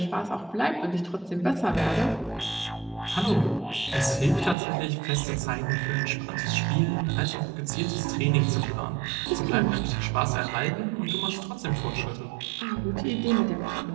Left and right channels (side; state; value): left; drops out; at 4.5 s